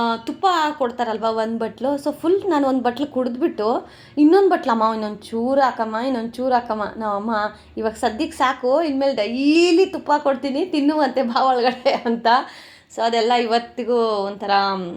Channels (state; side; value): identical; both; correlation 1.00